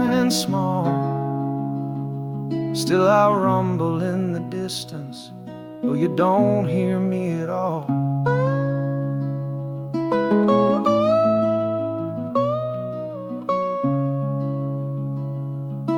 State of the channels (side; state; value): both; identical; correlation 1.00